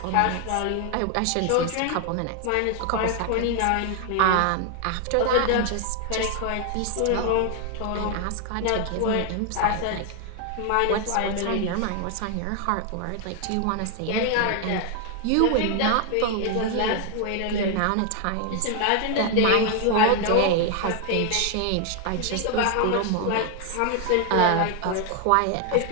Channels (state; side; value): different; both; correlation 0.00